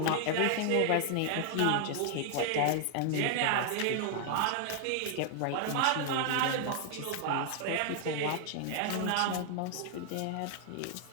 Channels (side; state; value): both; different; correlation 0.00